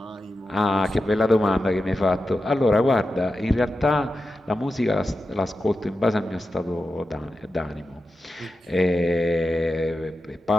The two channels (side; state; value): both; normal; correlation 0.91